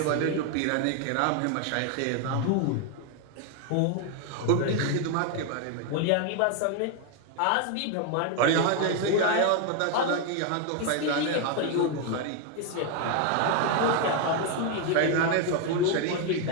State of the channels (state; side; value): different; both; correlation 0.01